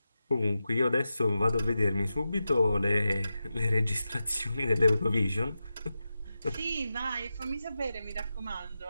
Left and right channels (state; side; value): inverted; both; correlation -0.91